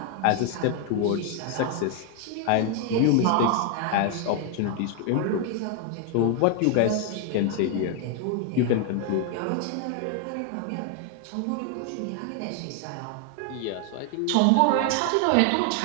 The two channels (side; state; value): both; different; correlation 0.00